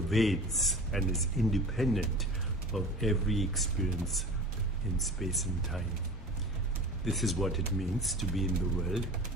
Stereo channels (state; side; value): normal; both; correlation 0.37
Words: and is independent of every experience in space and time. This is what it means to be in the world